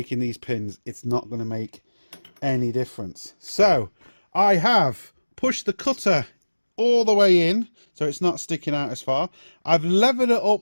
these pins, it's not going to make any difference. So I have pushed the cutter all the way in, so it's not sticking out as far. I've levered it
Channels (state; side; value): inverted; both; correlation -1.00